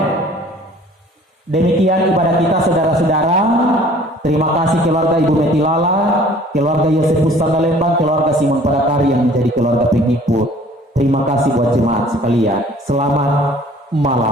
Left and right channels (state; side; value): normal; both; correlation 0.52